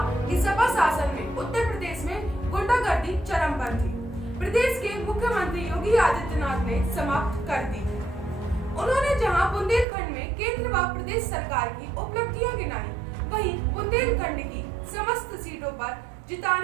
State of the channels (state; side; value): drops out; left; at 9.9 s